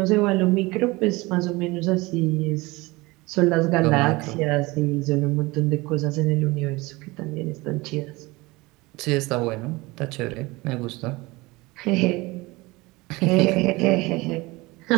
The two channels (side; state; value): left; quieter; 22.5 dB